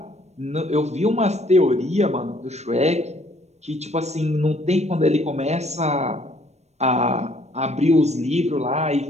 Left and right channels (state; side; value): late; left; 0.32 ms